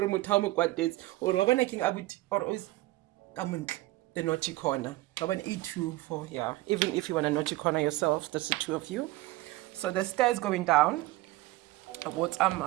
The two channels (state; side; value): quieter; left; 18.8 dB